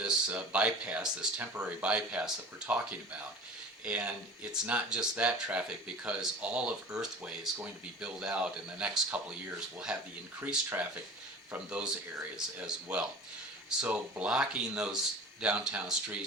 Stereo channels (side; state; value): both; normal; correlation 0.40